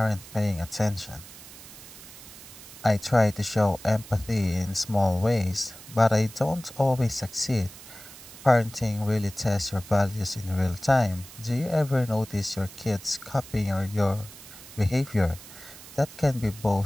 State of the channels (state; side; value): noise; right; hiss, 17 dB below the sound